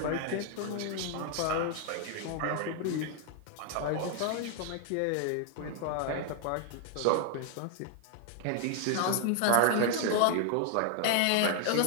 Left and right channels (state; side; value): different; both; correlation 0.00